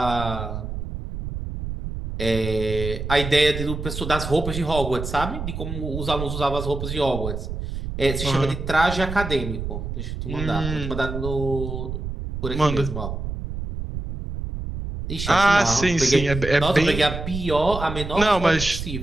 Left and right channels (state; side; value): noise; right; rumble, 6 dB below the sound